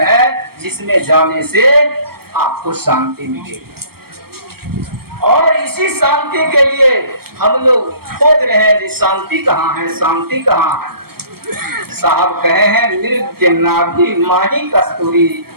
है जिसमें जाने से आपको शांति मिलेगी। और इसी शांति के लिए हम लोग खोज रहे हैं कि शांति कहाँ है, शांति कहाँ है। साहब कहे हैं, मृग के नाभि माही कस्तूरी,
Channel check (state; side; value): late; left; 0.94 ms